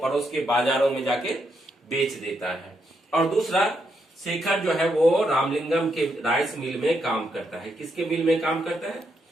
के बाजारों में जाके बेच देता है। और दूसरा, शेखर जो है वो रामलिंगम के राइस मिल में काम करता है। किसके मिल में काम करता है?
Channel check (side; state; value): both; normal; correlation 0.79